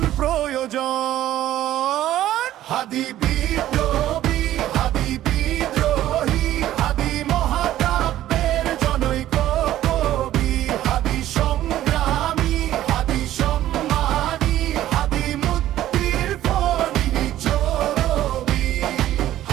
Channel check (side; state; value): left; quieter; 13.4 dB